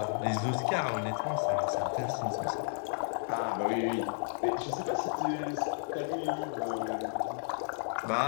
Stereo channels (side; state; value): right; silent; digital silence